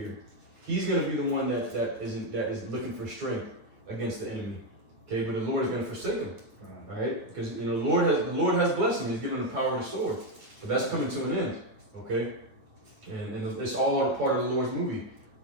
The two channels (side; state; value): left; late; 9.5 ms